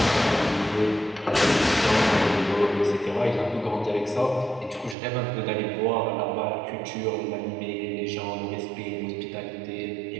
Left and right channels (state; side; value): drops out; left; at 5.0 s